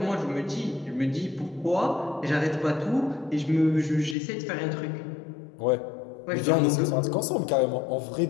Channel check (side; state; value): right; drops out; at 4.2 s